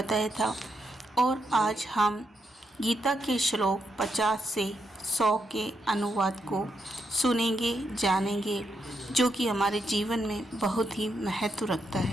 था और आज हम गीता के श्लोक 50 से 100 के अनुवाद को सुनेंगे, जानेंगे, जो कि हमारे जीवन में बहुत ही महत्व रखता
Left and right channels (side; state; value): both; normal; correlation 0.81